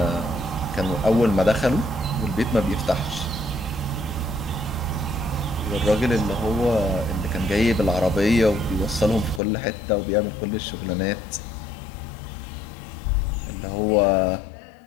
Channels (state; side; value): drops out; right; at 9.4 s